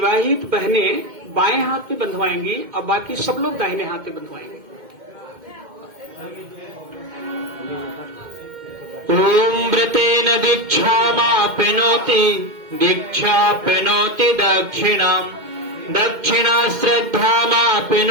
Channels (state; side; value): late; left; 2.1 ms